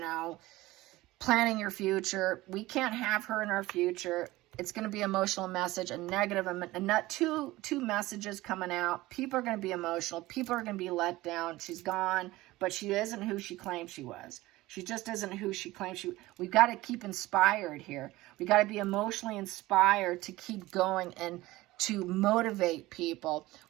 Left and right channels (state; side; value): quieter; left; 18.4 dB